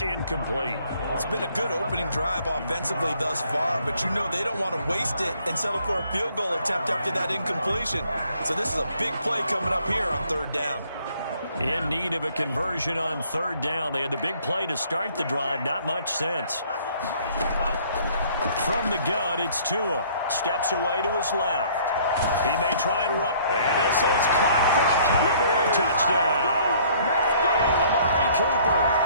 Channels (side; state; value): both; inverted; correlation -0.60